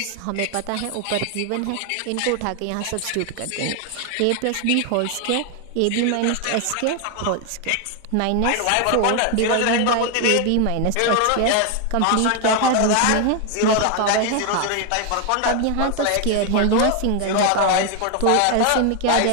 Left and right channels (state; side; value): different; both; correlation 0.01